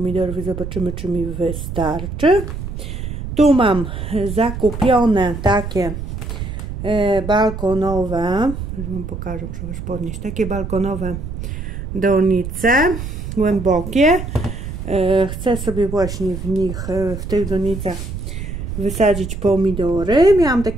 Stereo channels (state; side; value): noise; right; rumble, 7 dB below the sound